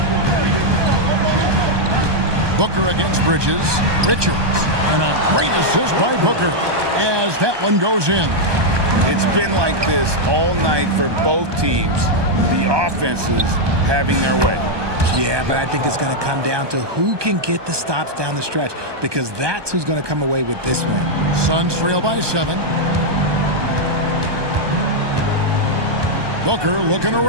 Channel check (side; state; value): left; late; 1.2 ms